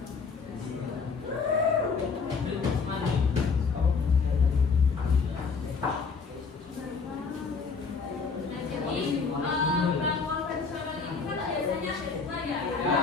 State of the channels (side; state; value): right; quieter; 5.0 dB